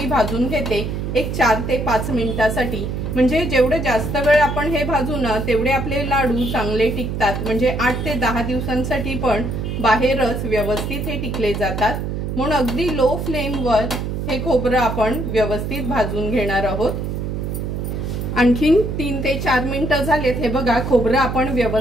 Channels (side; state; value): right; noise; hum, 3 dB below the sound